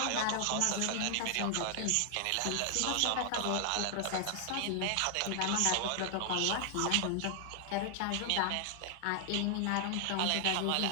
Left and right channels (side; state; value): both; different; correlation 0.00